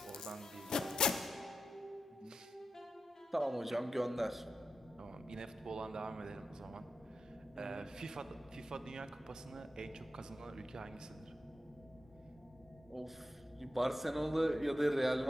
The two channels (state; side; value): normal; both; correlation 0.90